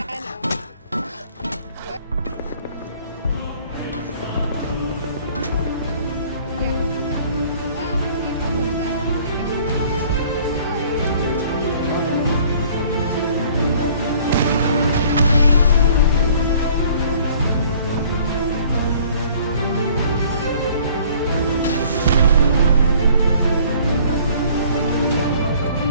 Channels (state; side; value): inverted; both; correlation -0.54